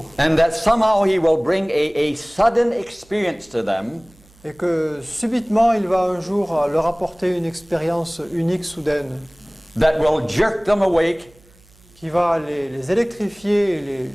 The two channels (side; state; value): right; noise; hum, 29 dB below the sound